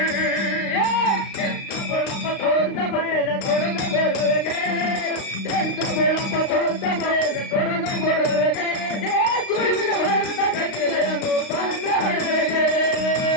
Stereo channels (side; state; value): right; late; 35 ms